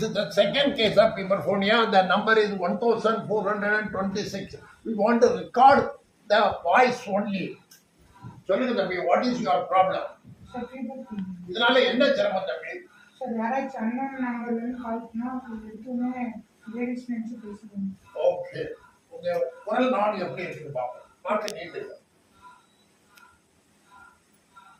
is the second case of hyperphonia. The number is 1426. We want to record the voice only. சொல்லுங்க தம்பி, what is your problem? இதனால என்ன சிரமம் தம்பி? சார் யாராச்சும் அண்ணன் நம்பர்லேருந்து கால் பண்ணால் எதுவுமே லேடிஸ் நினச்சி பேசுகிறேன். ஓகே, உங்கள் குரல் நான் எப்படி இருக்குது பார்ப்போம். மாற்ற நீட்டு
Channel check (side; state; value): both; identical; correlation 1.00